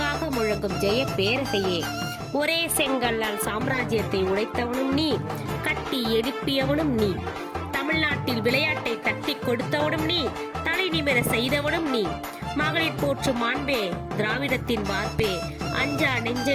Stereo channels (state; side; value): identical; both; correlation 1.00